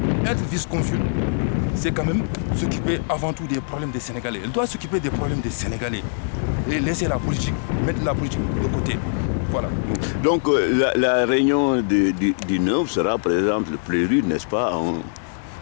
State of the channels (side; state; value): right; silent; digital silence